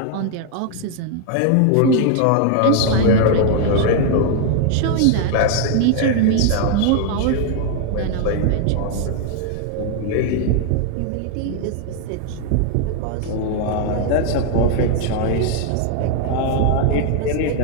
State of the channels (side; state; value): both; different; correlation 0.00